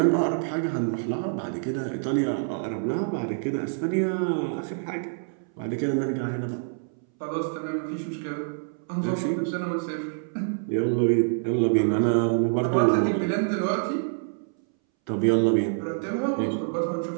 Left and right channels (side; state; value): left; silent; 61 dB below the other